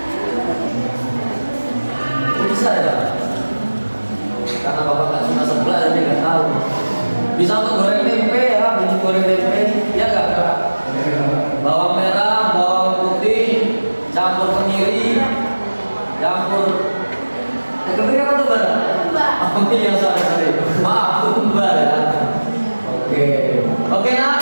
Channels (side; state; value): both; inverted; correlation -1.00